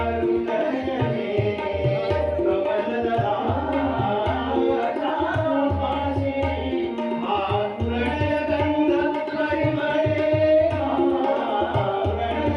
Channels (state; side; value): identical; both; correlation 1.00